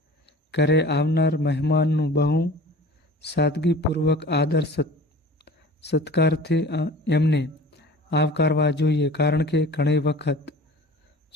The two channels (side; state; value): both; normal; correlation 0.42